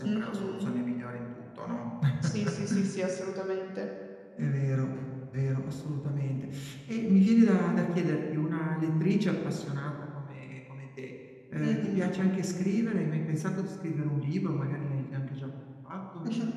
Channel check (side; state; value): both; identical; correlation 1.00